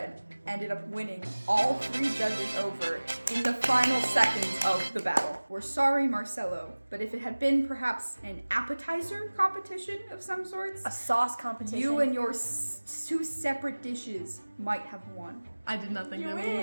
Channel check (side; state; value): both; inverted; correlation -1.00